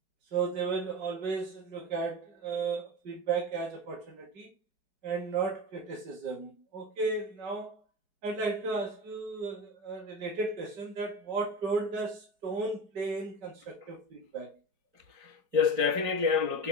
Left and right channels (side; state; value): left; late; 4.4 ms